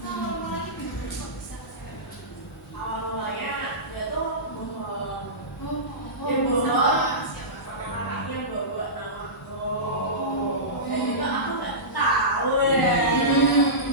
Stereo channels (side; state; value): both; normal; correlation -0.19